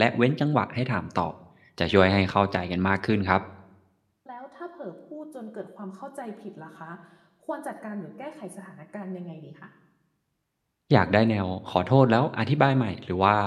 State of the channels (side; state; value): both; identical; correlation 1.00